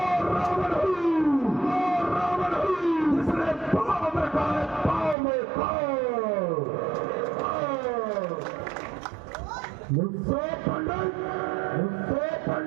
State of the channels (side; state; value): left; drops out; at 5.2 s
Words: रावण हूँ जिसने पाँव में खाए पाँव में खाओ। मुझसे पंडित